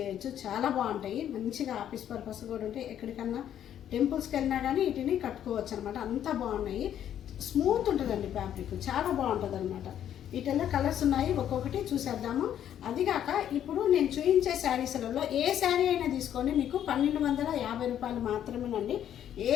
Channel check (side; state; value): right; quieter; 10.3 dB